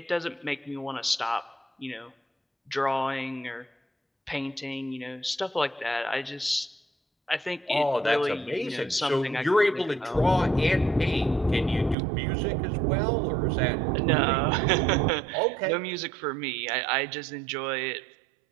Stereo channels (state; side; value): drops out; left; at 12.0 s